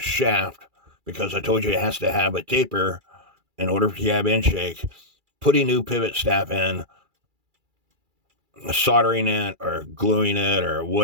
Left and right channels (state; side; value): late; left; 2.3 ms